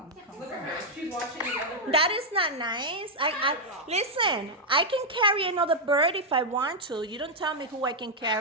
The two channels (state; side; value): normal; both; correlation -0.03